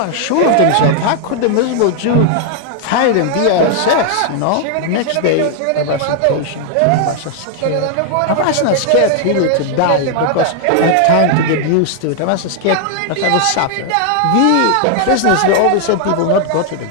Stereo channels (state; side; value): different; both; correlation 0.00